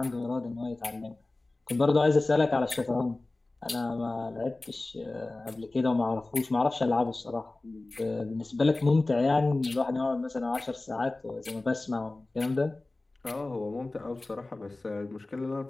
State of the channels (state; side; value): quieter; right; 3.0 dB